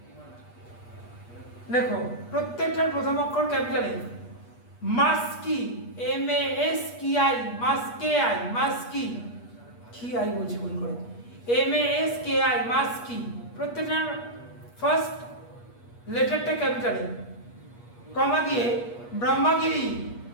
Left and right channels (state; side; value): late; right; 8.3 ms